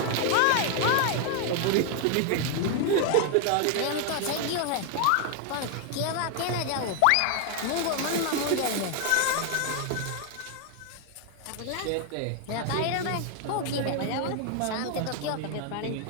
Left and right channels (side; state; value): both; different; correlation 0.00